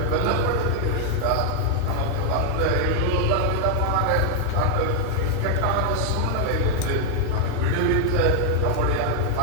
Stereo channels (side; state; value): both; different; correlation 0.00